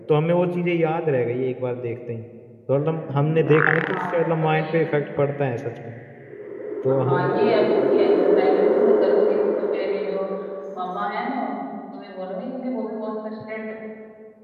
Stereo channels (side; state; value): both; identical; correlation 1.00